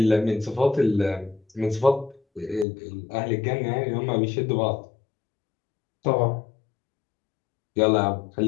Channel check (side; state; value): right; drops out; at 2.7 s